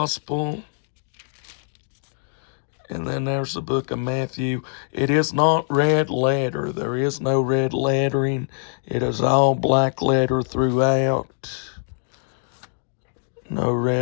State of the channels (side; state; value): right; silent; 63 dB below the other